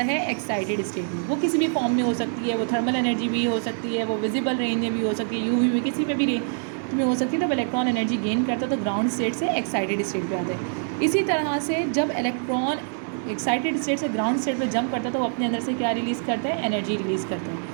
है, एक्साइटेड स्टेट में। वो किसी भी फॉर्म में हो सकती है, वो थर्मल एनर्जी भी हो सकती है, वो विजिबल रेंज में भी हो सकती है, यूवी में, किसी में भी रेंज में हो सकती है। जब इलेक्ट्रॉन एनर्जी गेन करता है तो ग्राउंड स्टेट से एक्साइटेड स्टेट पे आता है। इसी तरह से जब इलेक्ट्रॉन एक्साइटेड स्टेट से ग्राउंड स्टेट पे जंप करता है तो वो अपने अंदर से क्या रिलीज़ करता है, एनर्जी रिलीज़ करता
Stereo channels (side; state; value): left; silent; 62 dB below the other